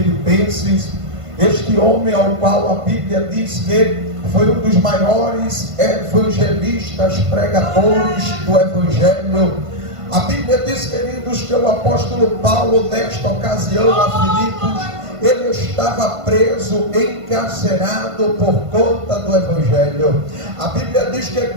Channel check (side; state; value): left; late; 1.5 ms